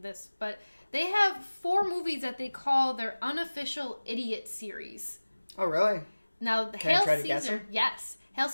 this, but they have 4 movies that they call their unofficial idiot series. Oh, really? Now, Can I try to guess them? Yes. Hail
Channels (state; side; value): inverted; both; correlation -1.00